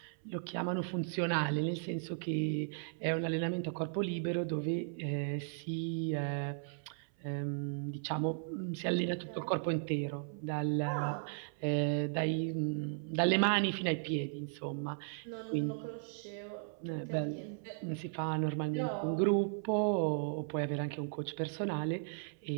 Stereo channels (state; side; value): silent; left; 54 dB below the other